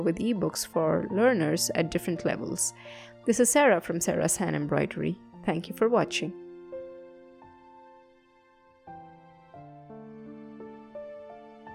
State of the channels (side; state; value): both; identical; correlation 1.00